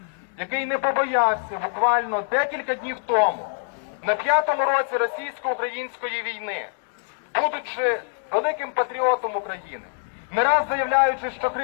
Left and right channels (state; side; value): silent; right; digital silence